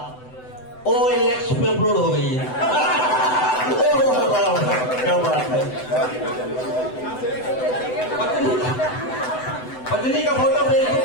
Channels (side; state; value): right; late; 7.9 ms